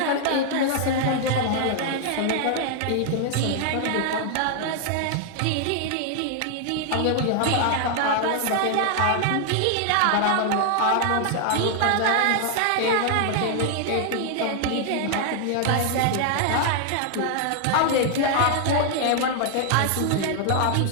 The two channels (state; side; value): different; both; correlation 0.00